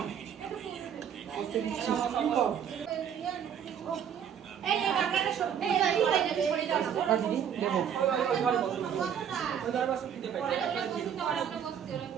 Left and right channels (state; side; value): quieter; left; 8.4 dB